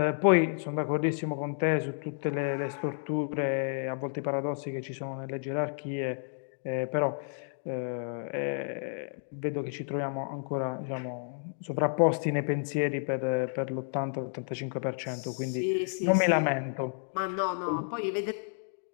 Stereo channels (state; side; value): silent; right; digital silence